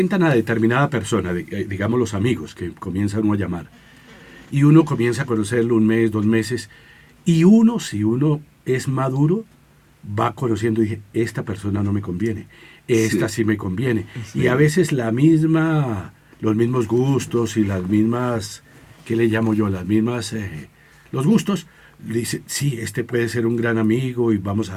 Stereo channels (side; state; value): both; identical; correlation 1.00